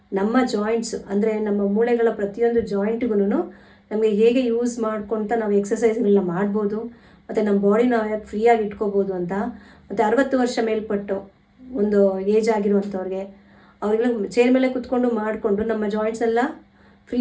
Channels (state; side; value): identical; both; correlation 1.00